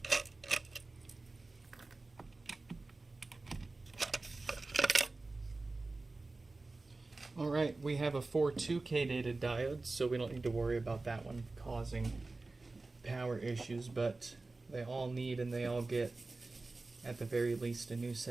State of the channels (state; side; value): quieter; left; 3.4 dB